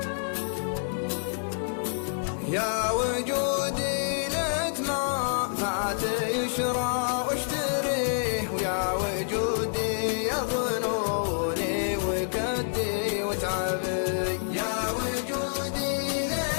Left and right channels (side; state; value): right; silent; digital silence